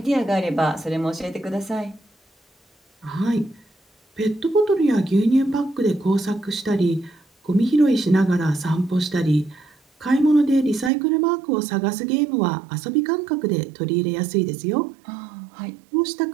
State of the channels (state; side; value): drops out; left; at 10.9 s